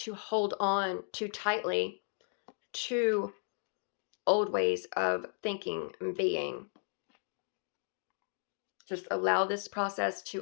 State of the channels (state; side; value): silent; right; 55 dB below the other